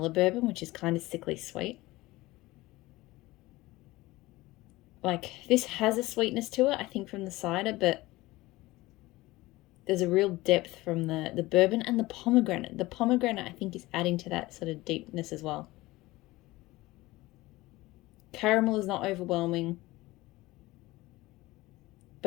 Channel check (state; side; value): quieter; right; 19.4 dB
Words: bourbon, which is kind of sickly sweet. Like, this has a sweetness to it, I think, from the cider, but there's a real depth from the bourbon and the pomegranate. The pomegranate, I think, is adding to that sort of deepness as well. Caramel is not overwhelming,